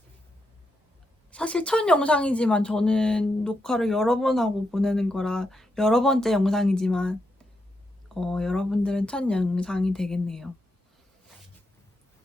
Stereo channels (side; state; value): both; normal; correlation 0.83